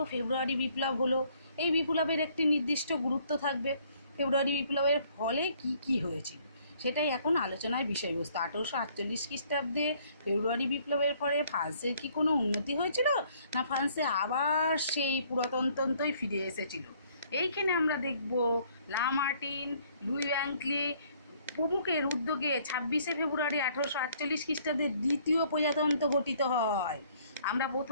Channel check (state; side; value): inverted; both; correlation -0.62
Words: ফেব্রুয়ারি বিপ্লব হলো, এই বিপ্লবের একটি নির্দিষ্ট গুরুত্ব থাকবে। ফেব্রুয়ারি বিপ্লবের ফলে কি কি হয়েছিল সেটাই এখন আলোচনার বিষয়বস্তু। 1848 খ্রিস্টাব্দে ফেব্রুয়ারি বিপ্লবের ফলে ফ্রান্সের কি কোনো উন্নতি হয়েছিল, না ফ্রান্সে আবার সেই পুরাতনতন্ত্রই ফিরে এসেছিল? এইখানে আমরা দেখব লামার্টিন, লুই ওয়াংক্লি প্রমুখের উদ্যোগে 26শে ফেব্রুয়ারি 1848 খ্রিস্টাব্দে দ্বিতীয় প্রজাতন্ত্র গঠিত হয়। আমরা